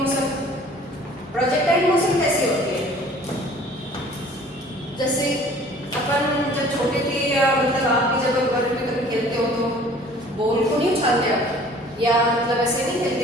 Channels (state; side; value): normal; both; correlation 0.51